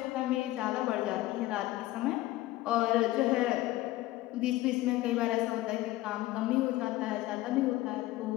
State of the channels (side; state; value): right; quieter; 16.9 dB